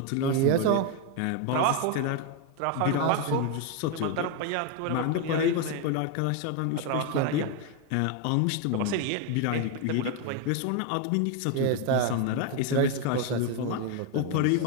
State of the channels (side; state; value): both; different; correlation 0.01